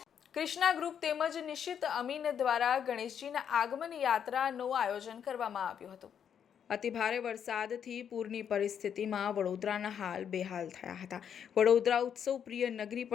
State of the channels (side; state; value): right; quieter; 8.3 dB